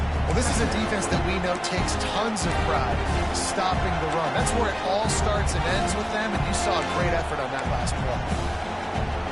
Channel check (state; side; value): identical; both; correlation 1.00